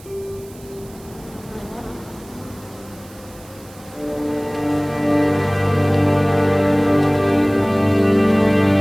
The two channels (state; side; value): noise; right; hiss, 23 dB below the sound